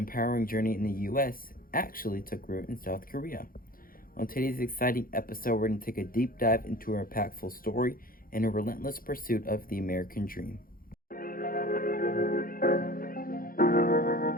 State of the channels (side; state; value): right; late; 0.42 ms